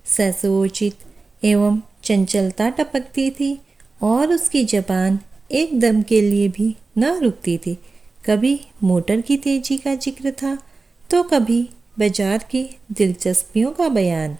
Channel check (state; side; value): quieter; left; 3.8 dB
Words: ससोचित एवं चंचलता टपकती थी और उसकी जबान एक दम के लिए भी न रुकती थी। कभी मोटर की तेजी का जिक्र था तो कभी बाजार की दिलचस्पियों का बयान।